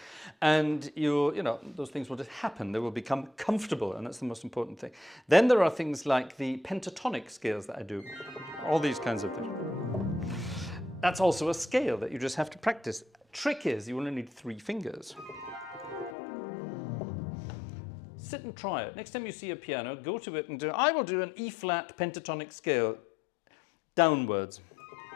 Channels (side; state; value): right; drops out; at 16.2 s